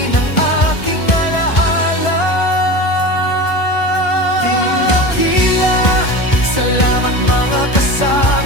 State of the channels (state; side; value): late; right; 1.5 ms